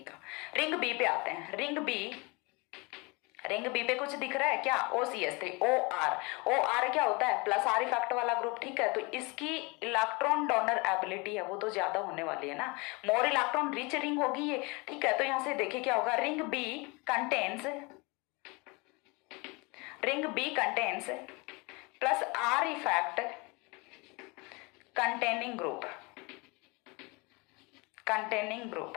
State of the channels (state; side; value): quieter; right; 27.4 dB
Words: का। रिंग B पे आते हैं। रिंग B पे कुछ दिख रहा है क्या, OCH3 OR क्या होता है, प्लस आर इफेक्ट वाला ग्रुप। ठीक है, तो इसकी इलेक्ट्रॉन डोनर एबिलिटी है वो तो ज्यादा होने वाली है ना, मोर इलेक्ट्रॉन रिच रिंग होगी ये। ठीक है, तो यहां से देखिए क्या होगा, ring B contains plus R effect containing